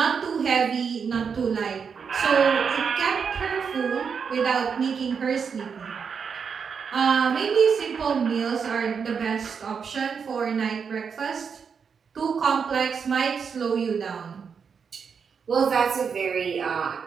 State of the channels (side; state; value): left; quieter; 6.3 dB